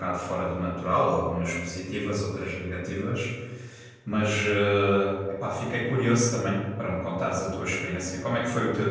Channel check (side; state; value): both; identical; correlation 1.00